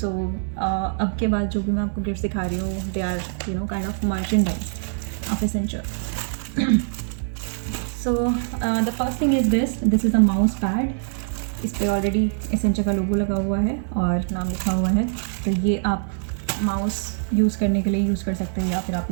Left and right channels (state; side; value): silent; left; digital silence